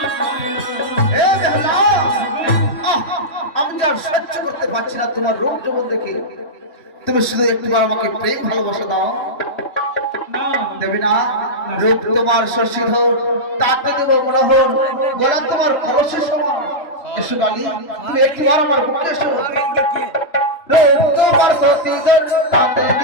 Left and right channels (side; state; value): right; late; 3.0 ms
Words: সহ্য করতে পারছি না তোমার রূপ যৌবন দেখে তুমি শুধু একটিবার আমাকে প্রেম ভালোবাসা দাও দেবে না রূপ তোমার শশীধর তাতে দেব মনোহর গলা তোমার কলসের সমান এসো গালি তুমি একটিবার আমার বুকে এসো রূপ তোমার শশীধর তাতে